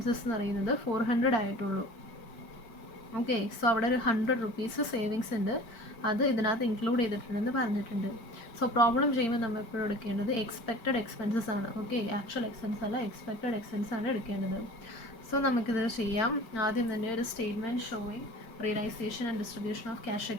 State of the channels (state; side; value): late; right; 4.4 ms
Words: എന്ന് പറയുന്നത് 400 ആയിട്ടുള്ളൂ. Okay, so അവിടെ ഒരു 100 rupees savings ഉണ്ട്, അത് ഇതിനകത്ത് ഇൻക്ലൂഡ് ചെയ്തിട്ടുണ്ടെന്ന് പറഞ്ഞിട്ടുണ്ട്. സോ പ്രോബ്ലം ചെയ്യുമ്പോൾ നമ്മൾ എപ്പോഴും എടുക്കേണ്ടത് എക്സ്പെക്റ്റഡ് എക്സ്പെൻസസ് ആണ്. ഓക്കെ, ആക്ച്വൽ എക്സ്പെൻസ് അല്ല, എക്സ്പെക്റ്റഡ് എക്സ്പെൻസ് ആണ് എടുക്കേണ്ടത്. സോ നമുക്കിത് ചെയ്യാം. ആദ്യം തന്നെ ഒരു statement showing realisation and distribution of cash